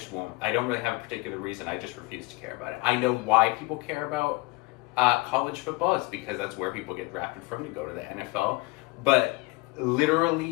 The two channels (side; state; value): right; quieter; 23.9 dB